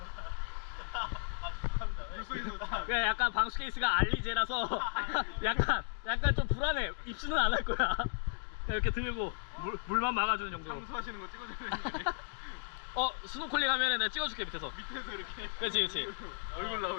그냥 약간 방수 케이스가 알리제라서 약간 좀 불안해. 입수는 안 할 거야. 이렇게 들고 물만 막아주는 정도. 청소하시는 거 찍어주면 스노클링 하면은 내가 찍어줄게 밑에서. 밑에서 이렇게. 그렇지. 얼굴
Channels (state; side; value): silent; right; digital silence